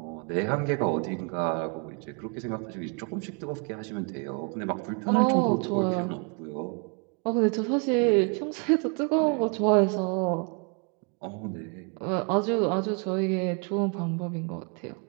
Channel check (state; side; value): quieter; left; 36.0 dB